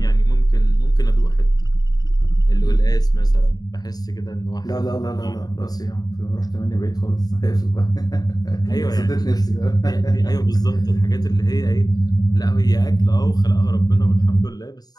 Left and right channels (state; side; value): late; right; 0.19 ms